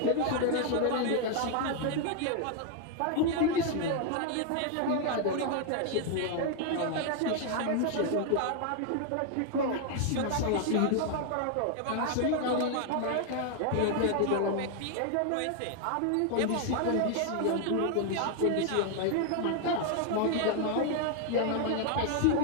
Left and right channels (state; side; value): different; both; correlation 0.00